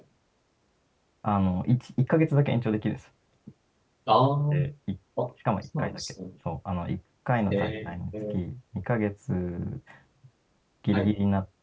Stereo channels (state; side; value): identical; both; correlation 1.00